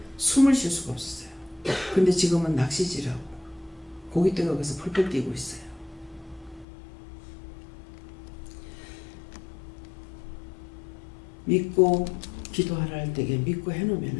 숨을 쉴 수가 없었어요. 근데 지금은 낚시질하고 고깃대가 거기서 펄펄 뛰고 있어요. 믿고 기도하라 할 때에 믿고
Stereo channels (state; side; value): drops out; right; at 6.7 s